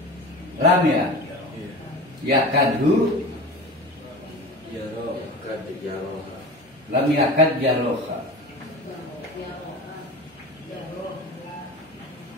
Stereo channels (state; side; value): normal; both; correlation 0.33